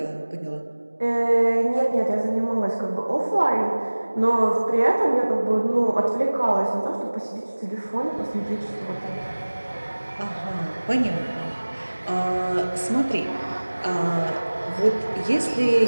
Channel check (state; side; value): inverted; both; correlation -1.00